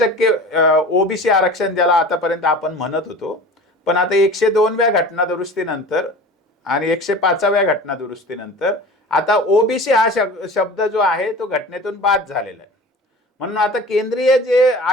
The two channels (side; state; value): both; normal; correlation 0.38